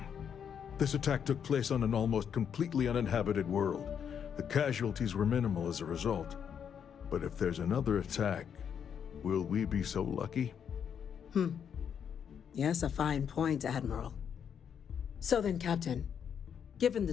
This attack took place on an almost completely uninhabited world. The casualties were minimal as a result. But if there's another attack, will we be so lucky? Yes, a fine point, Admiral. So then, Captain, given the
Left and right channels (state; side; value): quieter; right; 7.9 dB